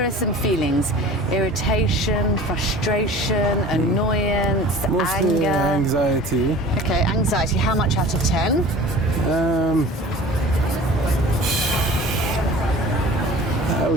are some feelings: irritation, frustration, annoyance, Mostly anger. anxiety. Okay, anxiety. How much out of 10? I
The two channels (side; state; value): both; normal; correlation 0.42